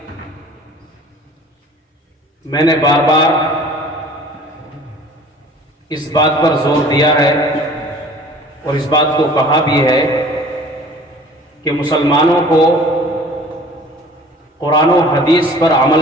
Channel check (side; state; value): both; normal; correlation 0.48